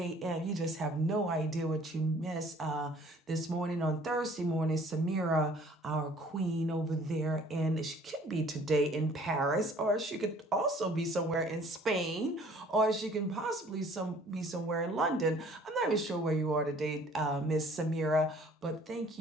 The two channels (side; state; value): both; normal; correlation 0.55